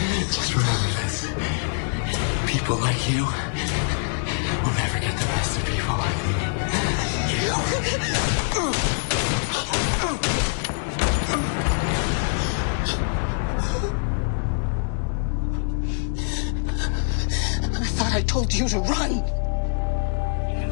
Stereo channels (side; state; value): right; silent; 62 dB below the other